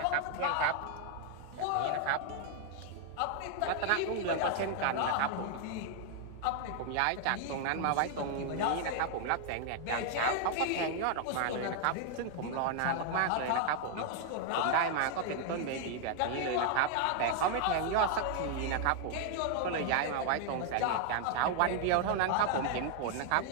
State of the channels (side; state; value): both; different; correlation 0.00